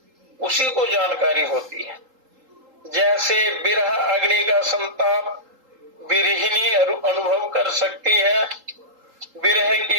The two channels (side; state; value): left; late; 3.8 ms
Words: उसी को जानकारी होती है। जैसे विरह अग्नि का संताप विरहिणी अनुभव कर सकती है। विरह